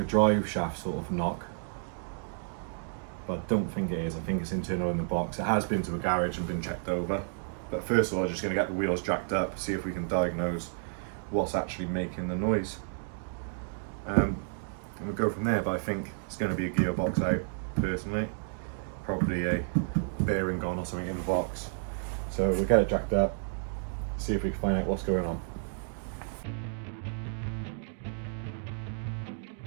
drive shaft sort of knock, but I don't think it is. I think it's internal in the box. It has been to a garage and been checked over. But first of all, I'm just going to get the wheels jacked up, see if we can diagnose what's actually making the noise. And we'll go from there, but I think it's going to be a gearbox out, personally. Probably a bearing gone or something in the box. So we'll get it jacked up, see if we can find out what's going on.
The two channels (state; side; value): silent; left; digital silence